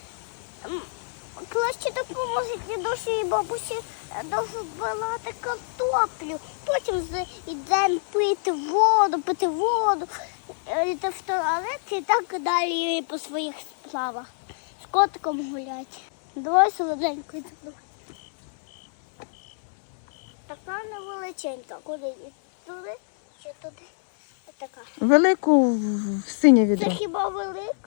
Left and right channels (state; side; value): silent; right; 61 dB below the other